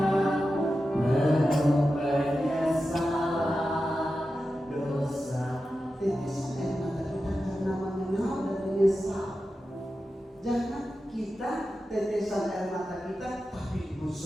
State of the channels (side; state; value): both; normal; correlation 0.92